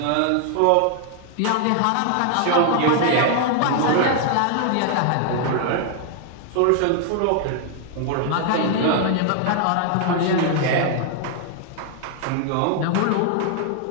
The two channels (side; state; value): both; different; correlation 0.00